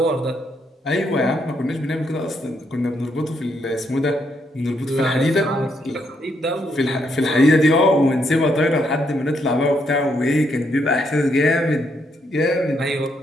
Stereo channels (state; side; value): normal; both; correlation 0.76